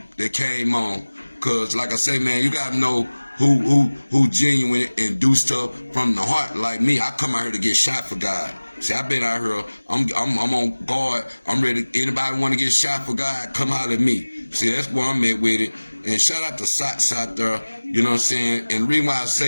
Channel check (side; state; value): both; inverted; correlation -1.00